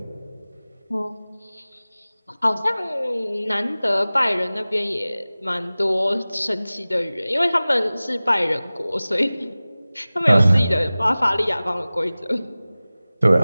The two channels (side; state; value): both; inverted; correlation -0.98